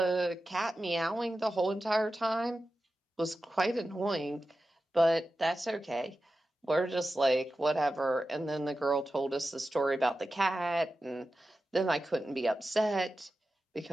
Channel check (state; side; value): normal; both; correlation 0.93